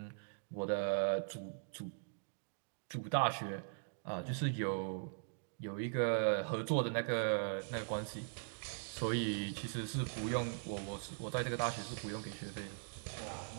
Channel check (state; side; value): silent; left; digital silence